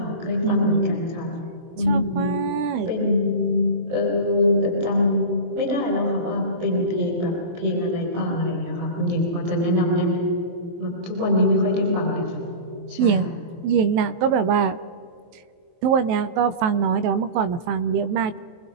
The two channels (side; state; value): left; late; 23 ms